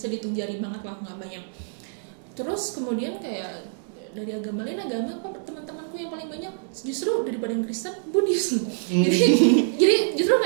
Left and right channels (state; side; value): silent; left; digital silence